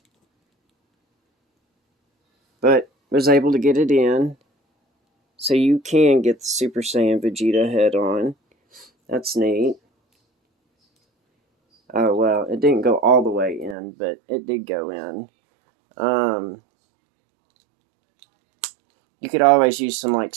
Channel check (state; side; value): drops out; left; at 13.8 s